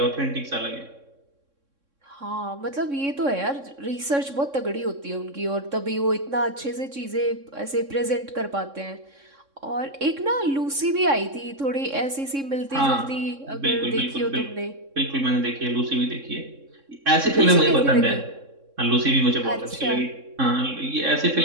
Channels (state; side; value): late; left; 3.6 ms